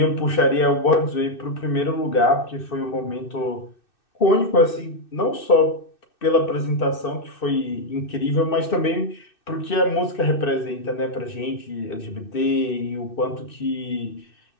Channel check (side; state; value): right; late; 2.6 ms